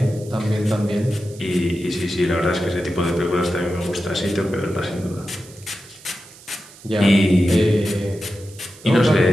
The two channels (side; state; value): right; noise; hiss, 21 dB below the sound